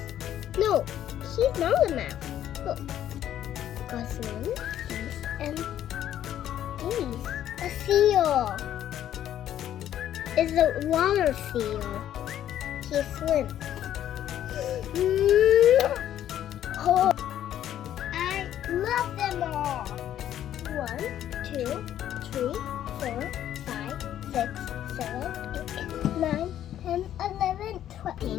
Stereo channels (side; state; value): right; quieter; 11.3 dB